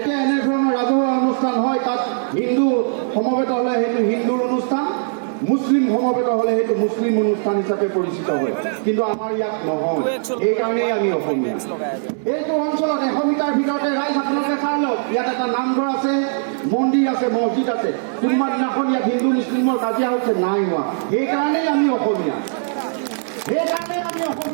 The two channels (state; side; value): silent; left; digital silence